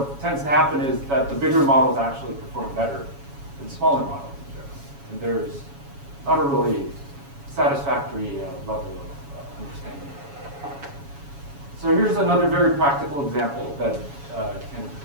tends to happen is that the bigger models actually perform better than smaller models in general. And there's not a really satisfactory level of understanding. So here's another very practical example that can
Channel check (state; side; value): late; left; 7.2 ms